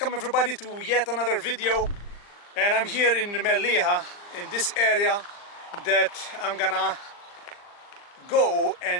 everybody to yet another video, and I'm here in Mellieha, in this area that I'm gonna go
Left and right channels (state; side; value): late; right; 40 ms